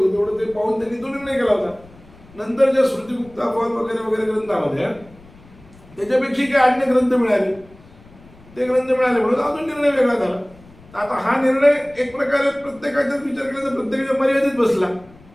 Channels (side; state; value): left; noise; rumble, 24 dB below the sound